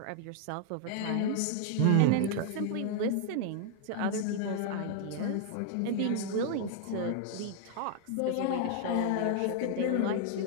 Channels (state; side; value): different; both; correlation 0.00